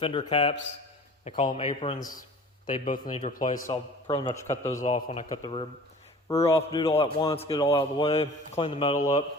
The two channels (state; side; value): normal; both; correlation 0.44